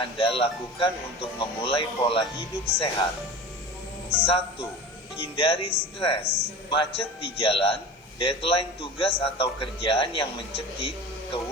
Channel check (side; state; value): both; normal; correlation 0.34